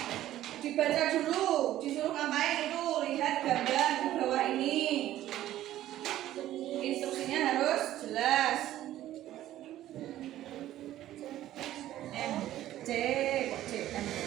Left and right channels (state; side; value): quieter; left; 13.6 dB